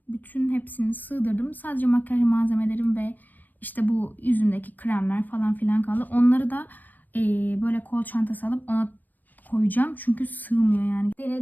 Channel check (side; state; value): right; late; 0.085 ms